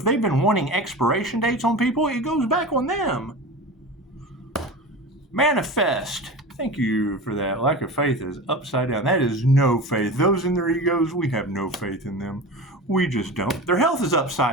they've been wanting expiration dates on people, it goes back on them. Manifest. Thank you for that. Lack of faith is upside down. That is no faith. Those in their egos, we have no faith in them. We just don't. Their health is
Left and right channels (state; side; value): normal; both; correlation 0.30